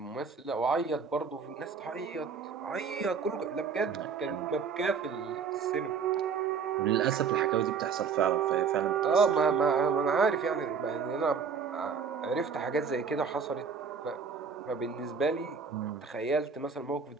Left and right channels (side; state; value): left; quieter; 5.9 dB